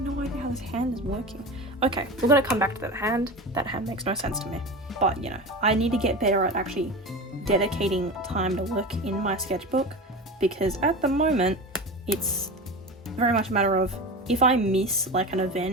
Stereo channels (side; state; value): both; normal; correlation 0.27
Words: idea how this hand is working. Okay, we're gonna come back to that hand. That hand makes no sense to me, but you know, I need to get better at actually dedicating time to work in my sketchbook, because at the moment it's very much a matter of if I miss like an